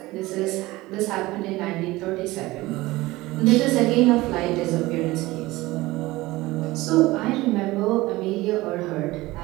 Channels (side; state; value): left; quieter; 19.4 dB